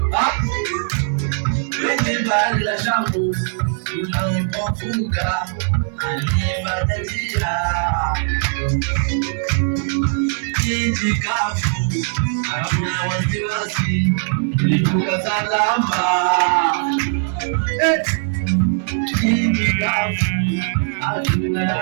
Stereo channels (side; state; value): left; silent; digital silence